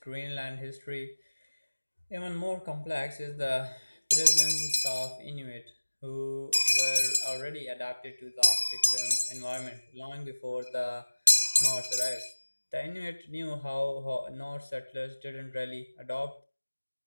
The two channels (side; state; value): both; inverted; correlation -1.00